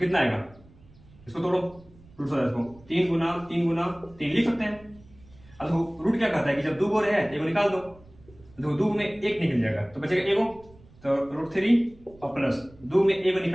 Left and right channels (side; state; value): right; noise; rumble, 25 dB below the sound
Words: आएगा? इसको तोड़ो √27 को, 3 गुना 3 गुना 3 लिख सकते हैं। अब देखो रूट क्या कहता है कि जब 2 गोरे है 1 निकाल दो, देखो 2 में 1 निकल जाएगा तो बचेगा 1, तो √3 और प्लस 2 में 1